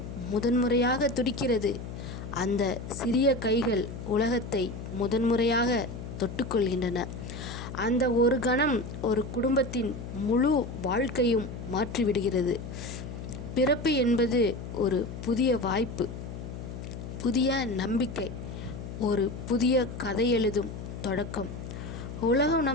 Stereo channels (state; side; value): noise; left; hum, 9 dB below the sound